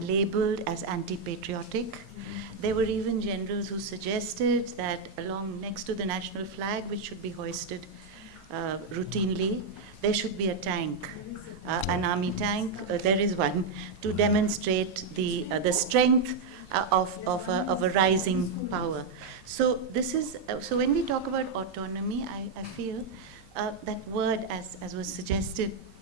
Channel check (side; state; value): left; quieter; 4.4 dB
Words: labeled as anti-patriotic. There were even generals who suggested that next to the national flag, which should be hoisted routinely, there should be a tank, an army tank. There is one, to demonstrate the strength of a rising power. So so when we talk about autonomy, I feel that word, as was suggested,